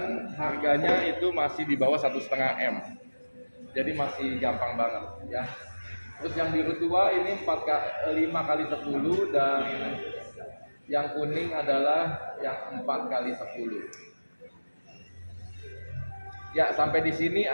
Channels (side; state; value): both; inverted; correlation -1.00